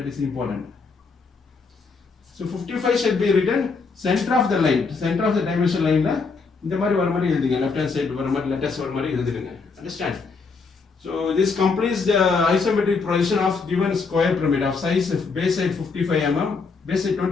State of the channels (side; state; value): right; quieter; 4.6 dB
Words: is important. So 55 should be written center of the line, center of the dimension line ல இந்த மாதிரி வர மாதிரி எழுதுங்க. left hand side வர மாதிரி letters வர மாதிரி எழுதிடுங்க. Understand? So this completes the isometric projection of given square pyramid of size base side 55 mm, base side